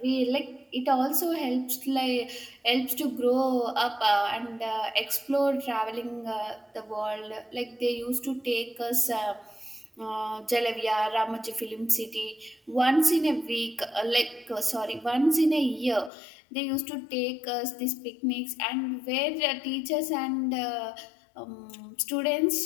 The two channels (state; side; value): drops out; right; at 16.1 s